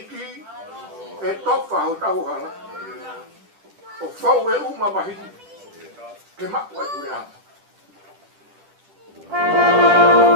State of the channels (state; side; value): late; left; 10 ms